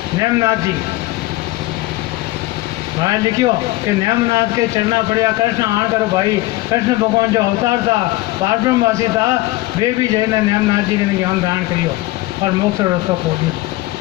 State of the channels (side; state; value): right; quieter; 18.4 dB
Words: नेमनाथ जी महाराज लिखियो कि नेमनाथ के चरना पड़िया कृष्ण आण करो भाई। कृष्ण भगवान जो अवतार था पारब्रह्मवासी था वे भी जैन नेमनाथ जी ने ज्ञान धारण करियो और मोक्ष रस्तो खोल दिया।